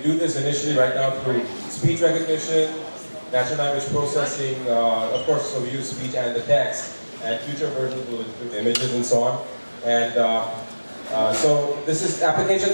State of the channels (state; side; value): inverted; both; correlation -1.00